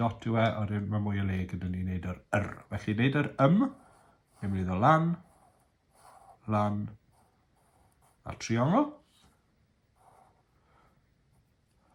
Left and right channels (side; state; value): both; identical; correlation 1.00